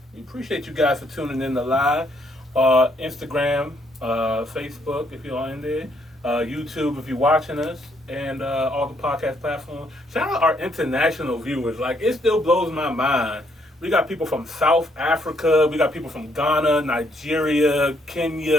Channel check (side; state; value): both; normal; correlation 0.71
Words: we appreciate you guys for tuning in to live. Instagram, Facebook if you're in there, YouTube if you're watching us, and all the podcast platforms. Shout out our international viewers. Like, it still blows my mind. We got people from South Africa, we got people from Ghana, Nigeria,